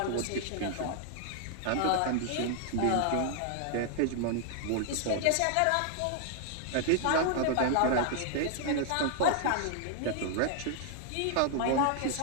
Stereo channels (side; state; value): both; different; correlation 0.00